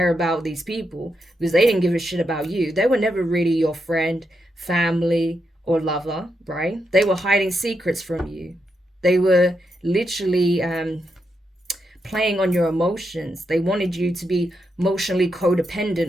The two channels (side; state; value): both; normal; correlation 0.83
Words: about these people because they didn't give a shit about you. They were never really your friend, family, or lover, right? They were hiding secrets from you. They were literally playing on your emotions. They wanted you to be emotionally